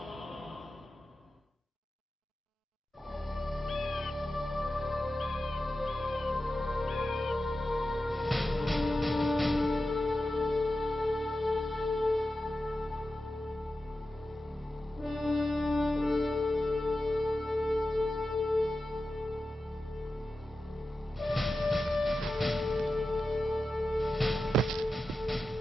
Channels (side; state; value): both; normal; correlation 0.92